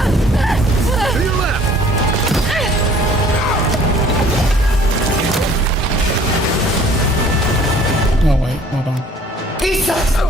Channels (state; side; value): normal; both; correlation 0.55